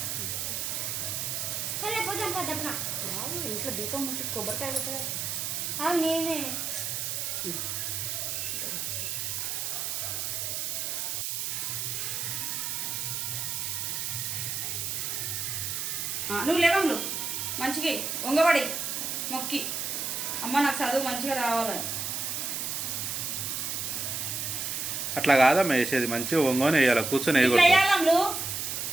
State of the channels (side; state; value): right; noise; hiss, 2 dB below the sound